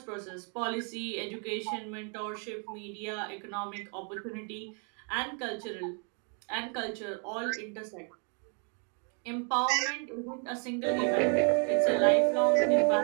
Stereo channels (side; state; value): left; quieter; 39.4 dB